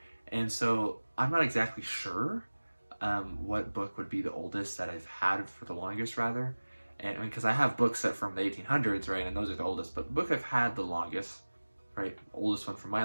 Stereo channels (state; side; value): inverted; both; correlation -1.00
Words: and so I'm not exactly sure what book would be the oldest that I've had for the longest, rather. And I mean, because I have books that from the 1800s, right, and those are the oldest, but the book I've had the longest, right, oldest one from my